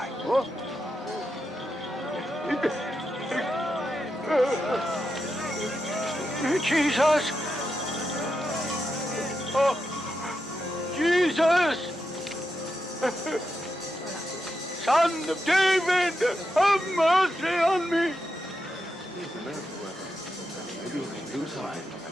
What? Jesus! Oh, Jesus! Son of David, have mercy on me!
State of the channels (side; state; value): both; normal; correlation 0.86